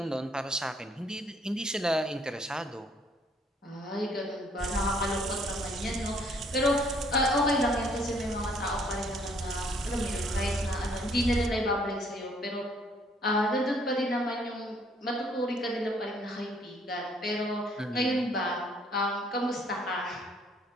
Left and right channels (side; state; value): both; normal; correlation 0.64